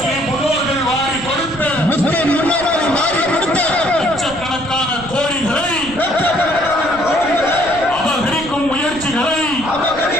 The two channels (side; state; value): right; noise; rumble, 15 dB below the sound